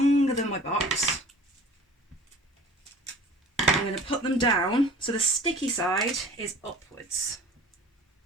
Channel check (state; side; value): normal; both; correlation 0.44